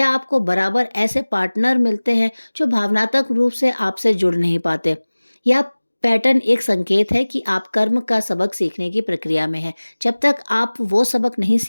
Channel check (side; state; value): both; inverted; correlation -1.00